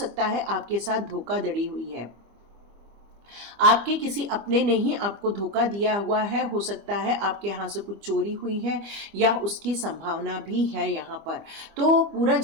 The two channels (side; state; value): left; late; 25 ms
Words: है आपके साथ धोखाधड़ी हुई है। आपके किसी अपने ने ही आपको धोखा दिया हुआ है। हो सकता है आपके यहाँ से कुछ चोरी हुई है या उसकी संभावना भी है यहाँ पर। तो पूरा